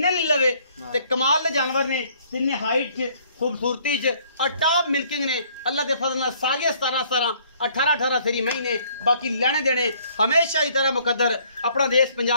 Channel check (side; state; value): both; inverted; correlation -0.62